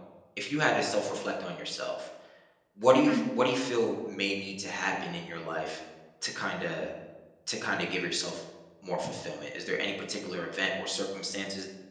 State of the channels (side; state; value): both; identical; correlation 1.00